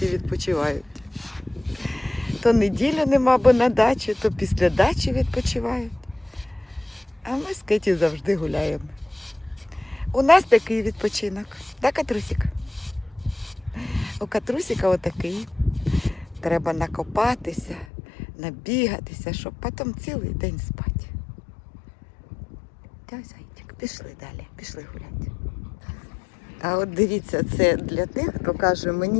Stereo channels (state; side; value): drops out; right; at 17.9 s